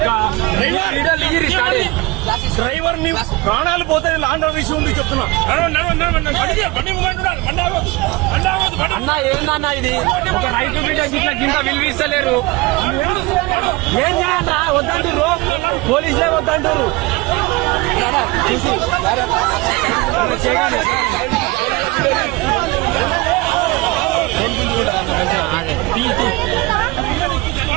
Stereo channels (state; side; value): quieter; left; 22.8 dB